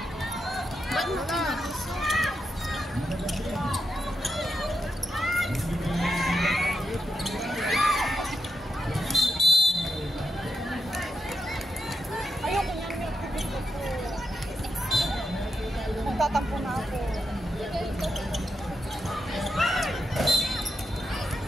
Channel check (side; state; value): both; normal; correlation 0.84